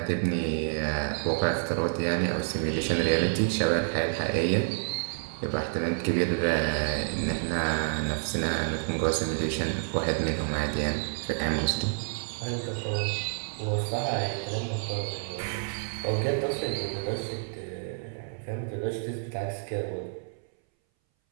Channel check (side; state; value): left; silent; 59 dB below the other